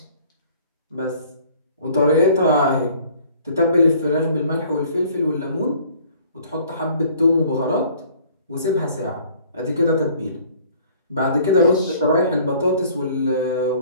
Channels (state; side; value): inverted; both; correlation -0.55